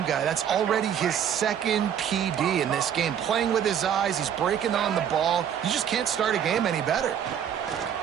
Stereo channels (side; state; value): left; quieter; 9.0 dB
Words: guy. That's already his second PD in this game. Playing with his eyes, he's breaking on the ball. You just can't start a game any better.